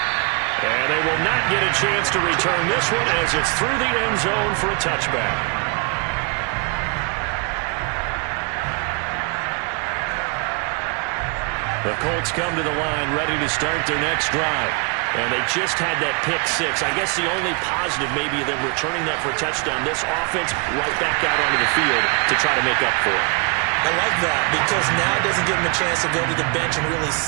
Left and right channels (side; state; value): left; quieter; 33.3 dB